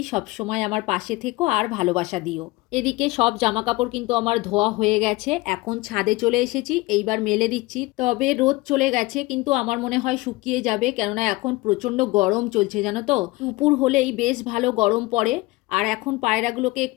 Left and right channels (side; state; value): right; quieter; 21.1 dB